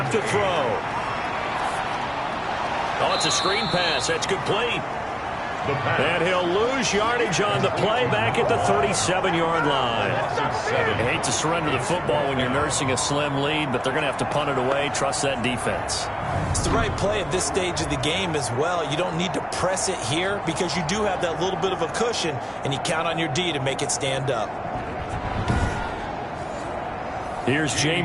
to throw. Oh, it's a screen pass. That's complete. And he'll lose yardage on the play back at the 37-yard line. I hate to surrender the football when you're nursing a slim lead, but they're going to have to punt it away. Trust that defense. It's the right play at this stage of the game as well. You don't need to press it here because you do have that little bit of a cushion, and you count on your D to make it stand up. Here's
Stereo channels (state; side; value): identical; both; correlation 1.00